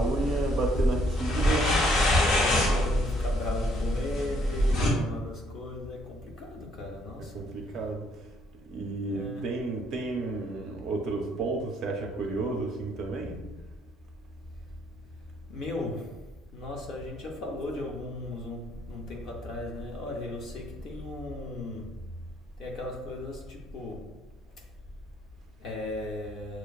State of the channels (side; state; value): both; normal; correlation 0.67